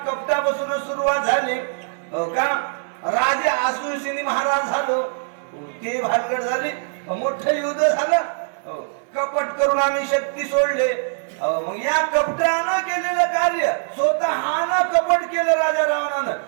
कपटापासून सुरुवात झाली. का राजे आसुरसिनी महाराज झालो ते भानगड झाली. मोठं युद्ध झालं. कपट करून आम्ही शक्ती सोडले. मग या कपटानं केलेलं कार्य स्वतःनं कपट केलं राजा रावणानं.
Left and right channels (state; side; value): silent; left; digital silence